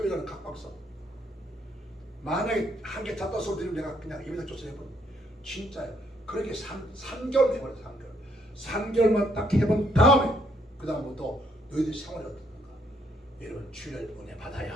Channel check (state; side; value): normal; both; correlation 0.70